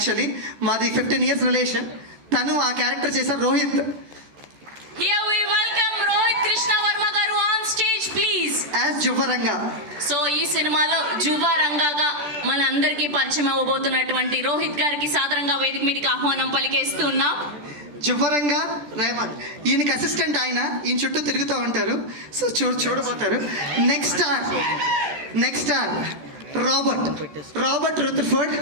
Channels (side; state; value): left; late; 14 ms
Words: మాది 15 years రిలేషన్. తను ఆ క్యారెక్టర్ చేశారు Rohit. Here we welcome Rohit Krishna Varma garu on stage please. As జువ్వరంగా. సో ఈ సినిమాలో జువ్వ రంగాగా మన అందరికీ పరిచయం అవ్వబోతున్నటువంటి రోహిత్ గారికి సాదరంగా వేదిక మీదకి ఆహ్వానం పలికేస్తున్నాం. జువ్వరంగా రేవంత్, ఈయనకి అసిస్టెంట్. ఆయన ఈయన చుట్టూ తిరుగుతూ ఉంటారు. సో చూడబోతారు. Next R Robert Rutherford.